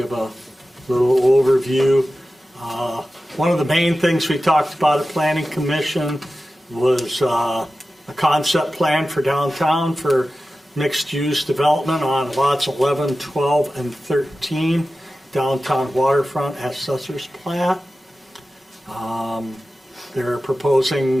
a little overview. One of the main things we talked about at Planning Commission was a concept plan for downtown for mixed-use development on lots 11, 12, and 13, downtown waterfront as Assessor's Plat. They're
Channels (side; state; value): both; normal; correlation 0.94